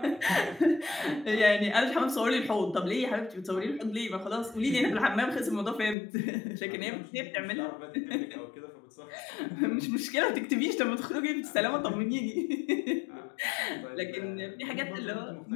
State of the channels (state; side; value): drops out; right; at 6.0 s